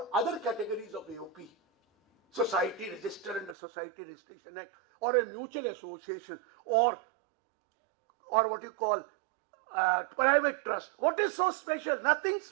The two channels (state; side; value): drops out; left; at 3.6 s